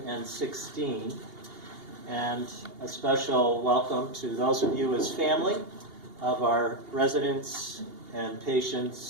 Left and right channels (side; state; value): left; late; 2.8 ms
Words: And a special welcome to those of you as family of our residents and